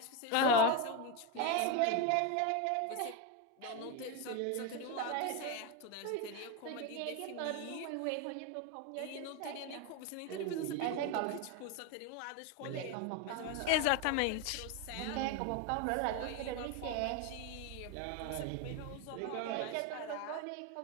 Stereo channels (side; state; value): both; different; correlation 0.02